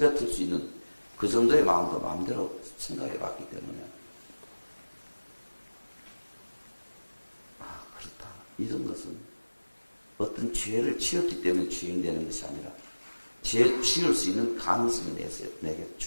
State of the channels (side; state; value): both; inverted; correlation -1.00